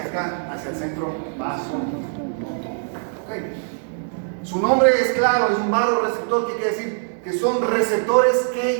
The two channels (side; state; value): left; silent; digital silence